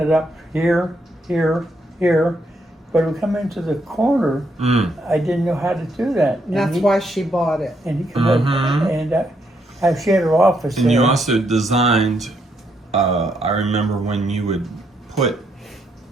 up here, here, here. But when we come into the corner, I didn't know how to do that. And that's why she bought it. And he come up, and she had her office And there. you also designed, I remember when you would put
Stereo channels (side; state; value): both; normal; correlation 0.76